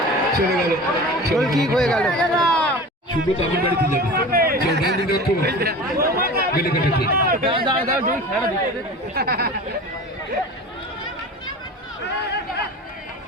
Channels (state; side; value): normal; both; correlation 0.35